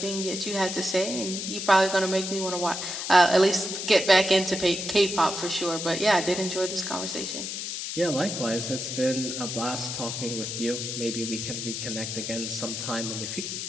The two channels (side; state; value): left; noise; hiss, 5 dB below the sound